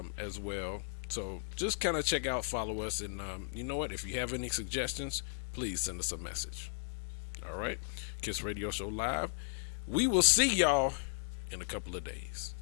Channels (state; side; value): silent; right; digital silence